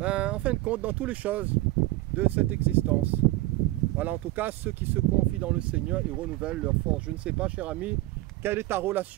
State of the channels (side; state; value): left; quieter; 18.7 dB